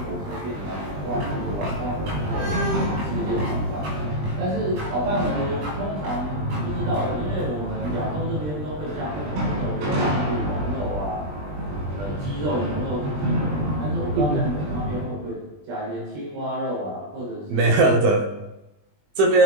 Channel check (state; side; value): late; left; 20 ms